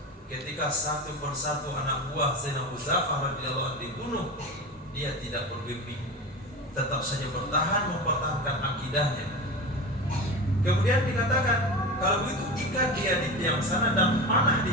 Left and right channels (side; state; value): both; normal; correlation 0.27